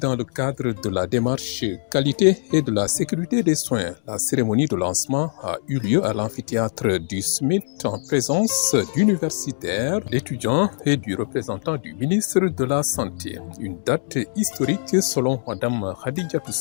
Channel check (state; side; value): silent; right; 64 dB below the other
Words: le cadre de la démarche qualité et de la sécurité des soins. La cérémonie de lancement a eu lieu à l'amphithéâtre du SMIT en présence d'universitaires, d'étudiants et du représentant du ministre de la Santé. Une date historique selon Mme Khadija